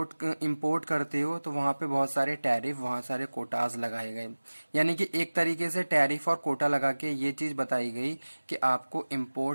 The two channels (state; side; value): inverted; both; correlation -1.00